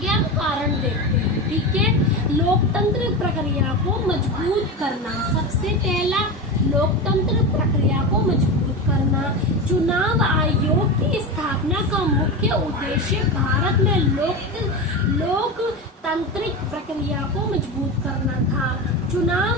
हम कारण देखते हैं। ठीक है। लोकतंत्र प्रक्रिया को मजबूत करना, सबसे पहला लोकतंत्र प्रक्रिया को मजबूत करना। चुनाव आयोग की स्थापना का मुख्य उद्देश्य भारत में लोकतांत्रिक प्रक्रिया को मजबूत करना था। चुनाव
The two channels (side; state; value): both; normal; correlation 0.22